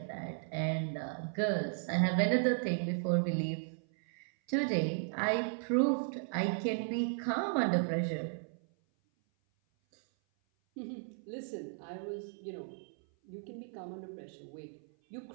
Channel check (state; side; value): silent; left; 54 dB below the other